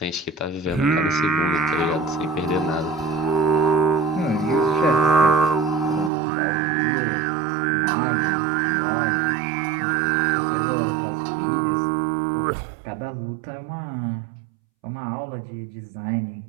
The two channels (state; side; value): drops out; left; at 6.1 s